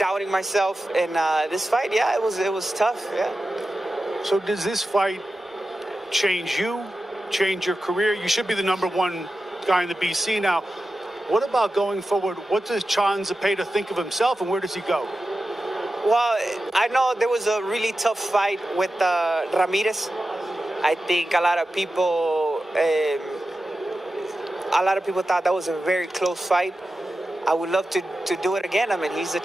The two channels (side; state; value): both; normal; correlation 0.92